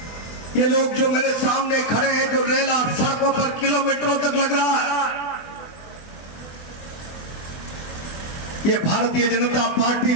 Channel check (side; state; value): right; late; 24 ms